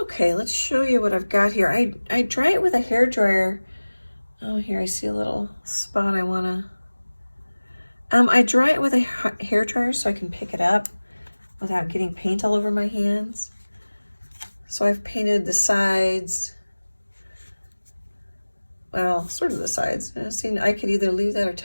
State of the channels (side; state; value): both; inverted; correlation -1.00